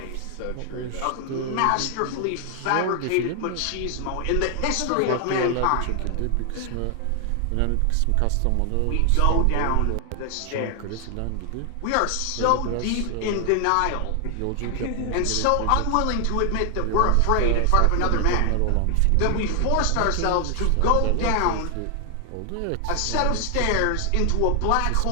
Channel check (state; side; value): different; both; correlation 0.00